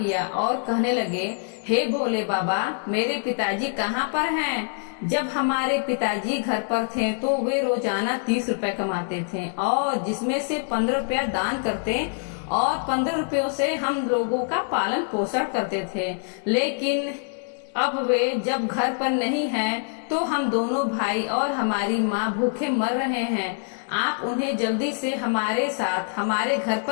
और कहने लगे, हे भोले बाबा, मेरे पिताजी कहाँ पर हैं? जब हमारे पिताजी घर पर थे तो वे रोजाना 30 रुपए कमाते थे और जिसमें से 15 रुपया दान करते और 15 रुपयों से हम लोगों का पालन पोषण करते थे। लेकिन अब वे जब घर पर नहीं हैं तो हम दोनों भाई और हमारी माँ भूखे मर रहे हैं। आप उन्हें जल्दी से हमारे साथ हमारे घर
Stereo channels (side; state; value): right; silent; digital silence